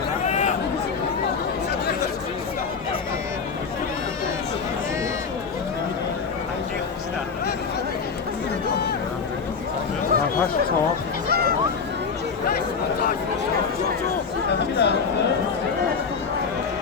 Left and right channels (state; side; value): quieter; right; 5.5 dB